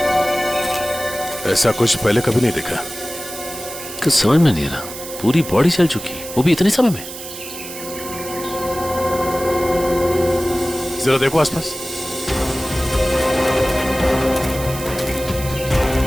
ऐसा कुछ पहले कभी नहीं देखा। कुछ समझ में नहीं आ रहा, पूरी बॉडी चल चुकी, वो भी इतने समय में। जरा देखो आसपास।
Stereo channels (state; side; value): noise; right; hiss, 11 dB below the sound